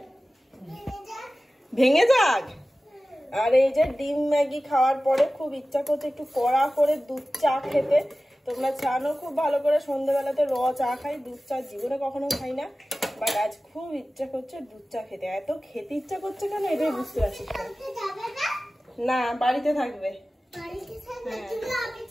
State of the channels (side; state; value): both; normal; correlation 0.96